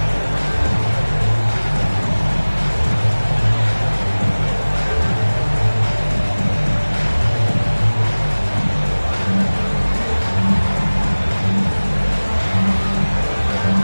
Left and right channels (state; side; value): inverted; both; correlation -1.00